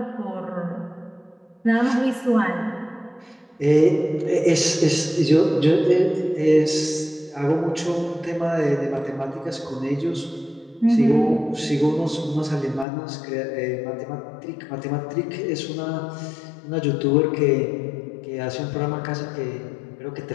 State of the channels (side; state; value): right; drops out; at 12.9 s